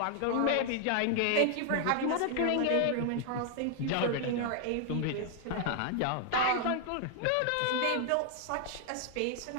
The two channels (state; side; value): different; both; correlation 0.00